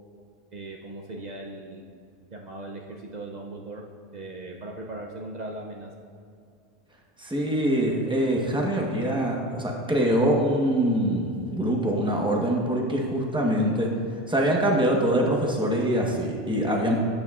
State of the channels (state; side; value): normal; both; correlation 0.34